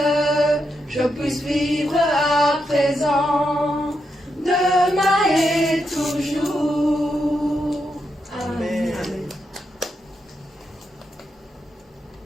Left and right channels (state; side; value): normal; both; correlation 0.83